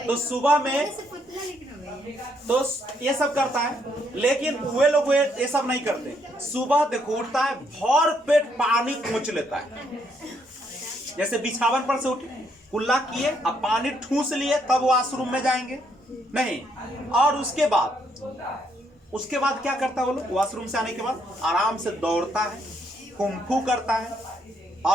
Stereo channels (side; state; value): both; normal; correlation 0.73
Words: तो सुबह में तो ये सब करता है, लेकिन वे लोग ये सब नहीं करते। सुबह देखो उठता है, भर पेट पानी खोच लेता है, जैसे बिछावन पर से उठे, कुल्ला किए, अब पानी ठूस लिए, तब वॉशरूम में जाएंगे नहीं। और उसके बाद क्या करता है वो लोग? वॉशरूम से आने के बाद आराम से दौड़ता है, कुंफू करता है,